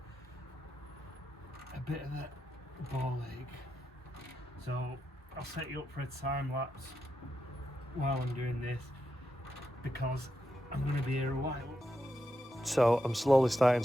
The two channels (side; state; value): both; normal; correlation 0.86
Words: bit of a ball ache. So I'll set you up for a time lapse while I'm doing this because I'm going to be here a while. So I'm slowly starting